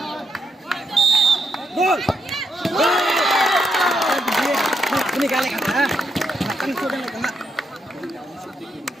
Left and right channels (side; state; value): both; normal; correlation 0.80